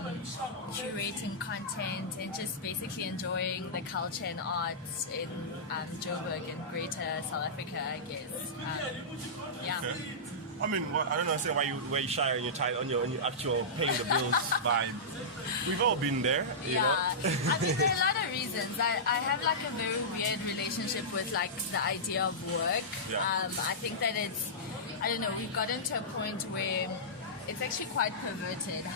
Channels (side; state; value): both; normal; correlation -0.15